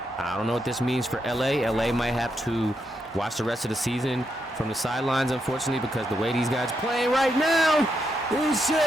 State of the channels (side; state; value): both; normal; correlation 0.82